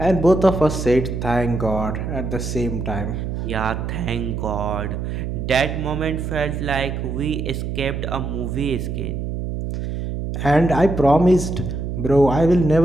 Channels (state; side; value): noise; right; hum, 4 dB below the sound